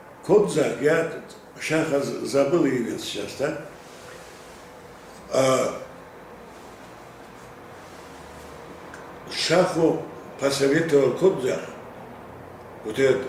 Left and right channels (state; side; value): identical; both; correlation 1.00